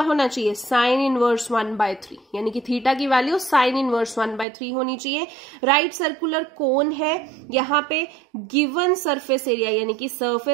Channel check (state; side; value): drops out; left; at 4.5 s